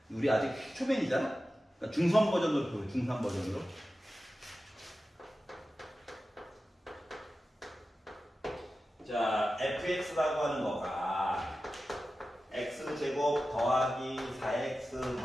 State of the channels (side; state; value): both; normal; correlation 0.94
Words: 우리 아직 초면이잖아? 그러니까 중선 버전으로 보여. 중선 버전으로. 자, fx라고 하는 거가 x제곱 더하기 4x